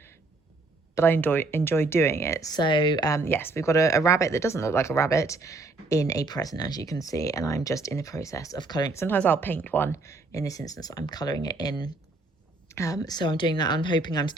but I enjoy doing it. So yes, we've got a rabbit that doesn't look like a rabbit in a present, as you can see, and I'm just in the process of colouring. Sometimes I'll paint one. In this instance, I'm colouring it in. So I'm doing that. I'm hoping I'm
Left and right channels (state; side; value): quieter; left; 3.3 dB